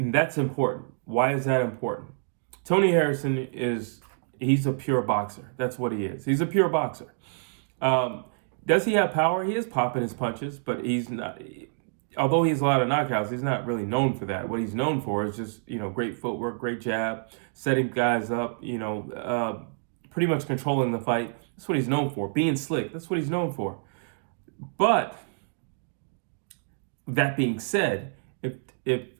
that's important. Why is that important? Tony Harrison he's a pure boxer. That's what he is. He's a pure boxer. Does he have power? He is popping his punches, but he's not, although he has a lot of knockouts, he's not really known for that. What he's known for is just, great footwork, great jab, setting guys up, pretty much controlling the fight. That's what he's known for. Being slick, that's what he's known for. But that being said, if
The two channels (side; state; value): left; silent; digital silence